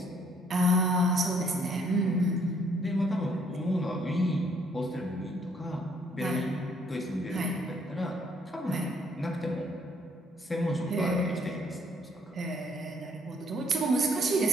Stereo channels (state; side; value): normal; both; correlation 0.65